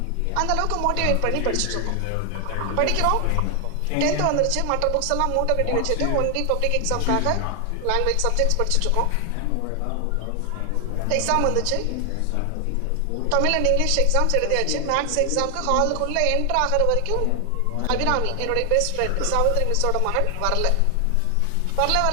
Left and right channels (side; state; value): both; different; correlation 0.00